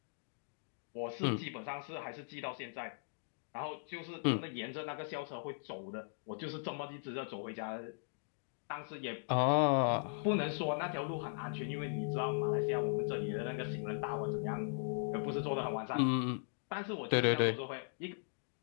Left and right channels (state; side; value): silent; right; digital silence